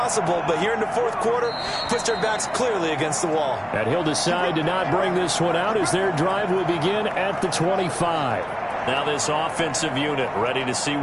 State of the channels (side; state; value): both; identical; correlation 1.00